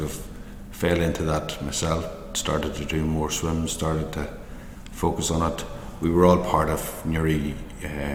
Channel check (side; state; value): both; identical; correlation 1.00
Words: fell into that myself. Started to do more swims, started to focus on it. We were all part of Newry